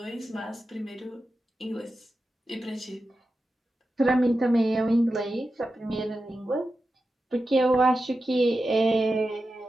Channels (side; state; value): both; normal; correlation 0.91